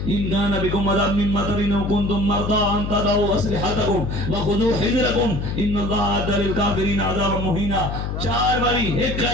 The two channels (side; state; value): left; noise; hum, 4 dB below the sound